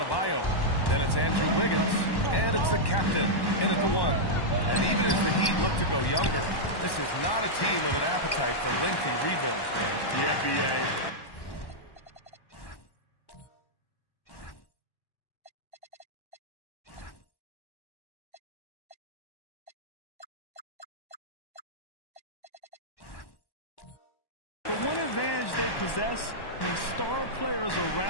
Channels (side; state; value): right; late; 1.1 ms